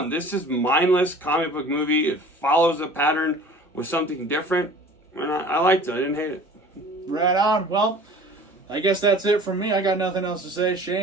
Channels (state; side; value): normal; both; correlation 0.45